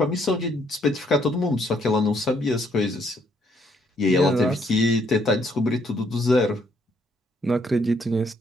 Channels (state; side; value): normal; both; correlation 0.69